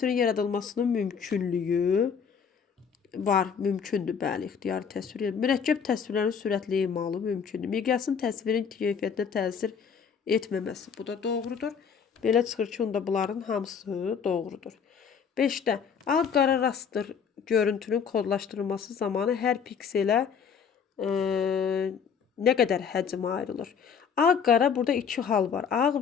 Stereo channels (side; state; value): right; quieter; 6.8 dB